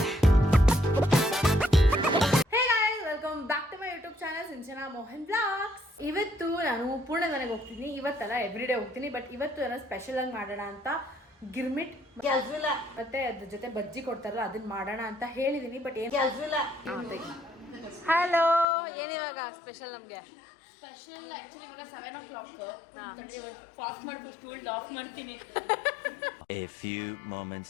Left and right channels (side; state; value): right; drops out; at 18.7 s